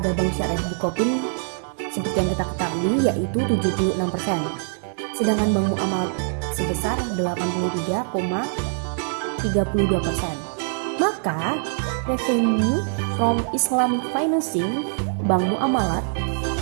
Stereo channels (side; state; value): left; silent; 63 dB below the other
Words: Bank Syariah Bukopin seperti yang kita ketahui yaitu 76%. Sedangkan Bank Muamalat sebesar 83,32%. Maka revenue from Islamic financing Bank Muamalat